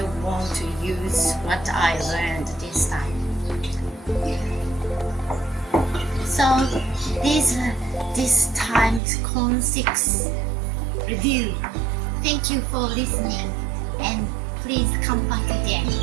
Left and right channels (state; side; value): drops out; left; at 9.0 s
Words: want to use what I learned this time. So this time's Con 6 review. Thank you for listening, and please come back again.